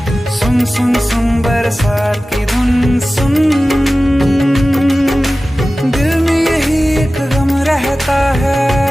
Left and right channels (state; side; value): normal; both; correlation 0.96